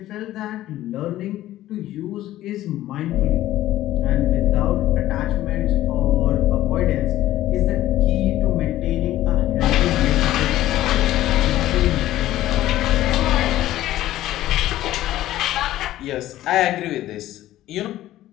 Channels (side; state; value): right; quieter; 14.4 dB